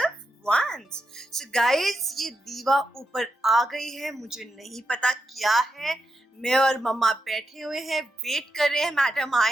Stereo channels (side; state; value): both; normal; correlation 0.85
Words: once. So guys, ये दीवा ऊपर आ गई है, मुझे नहीं पता क्या है। मैं और मम्मा बैठे हुए हैं, वेट कर रहे हैं मैडम